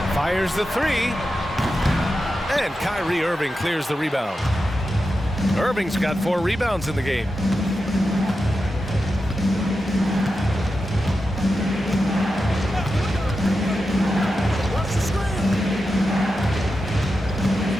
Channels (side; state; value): both; normal; correlation 0.90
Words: fires the three. And Kyrie Irving clears the rebound. Irving's got 4 rebounds in the game.